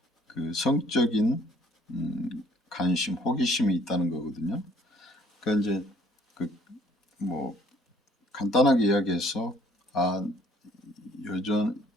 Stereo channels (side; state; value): both; normal; correlation 0.60